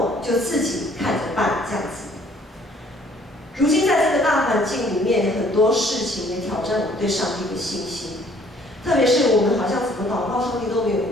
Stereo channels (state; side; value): normal; both; correlation 0.60